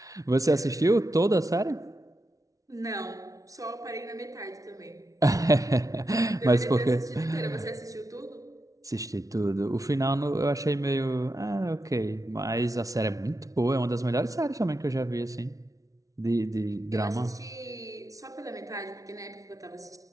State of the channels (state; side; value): late; left; 0.17 ms